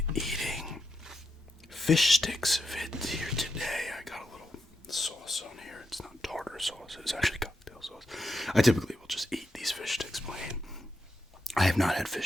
eating fish sticks vid here today. I got a little sauce on here. It's not tartar sauce. It's actually cocktail sauce. I typically will just eat these fish sticks plain. I have not had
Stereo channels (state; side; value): normal; both; correlation 0.85